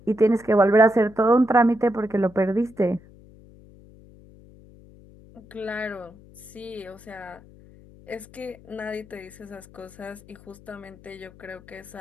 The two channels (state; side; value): noise; left; hum, 23 dB below the sound